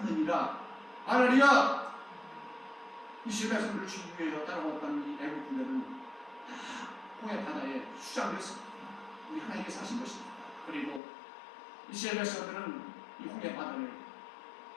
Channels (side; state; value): right; drops out; at 11.0 s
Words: 하나리야. 이스라엘 백성들을 죽이기 위해서 따라왔던 이 애굽 군대는 다 홍해 바다에 수장됐습니다. 우리 하나님께서 하신 것입니다. 그리고 이스라엘 백성들은 이 홍해 바다를